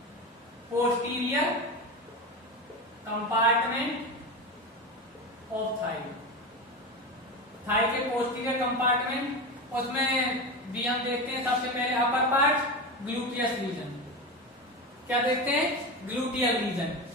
posterior compartment of thigh. Thigh के पोस्टीरियर कंपार्टमेंट, उसमें भी हम देखते हैं सबसे पहले अपर पार्ट ग्लूटियस रीजन। क्या देखते हैं, ग्लूटियल रीजन।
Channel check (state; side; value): normal; both; correlation 0.22